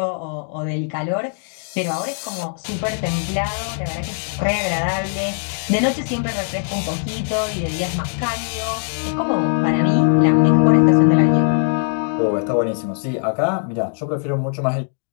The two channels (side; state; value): right; silent; 66 dB below the other